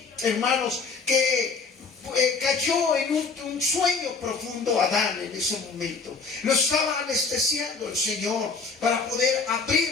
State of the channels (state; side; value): quieter; right; 4.7 dB